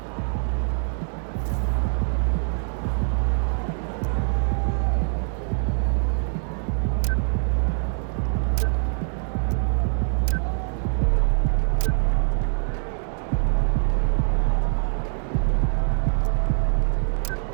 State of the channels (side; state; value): left; silent; 60 dB below the other